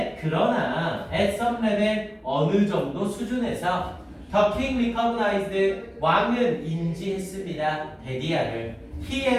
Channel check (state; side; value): identical; both; correlation 1.00